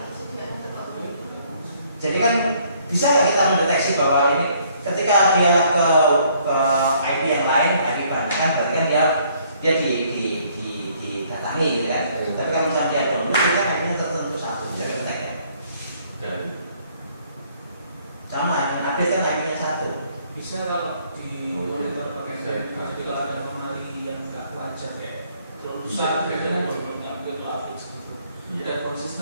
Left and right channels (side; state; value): both; inverted; correlation -0.64